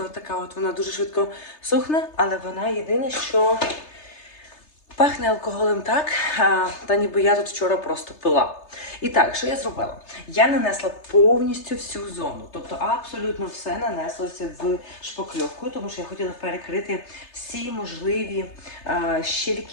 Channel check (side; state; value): right; late; 3.3 ms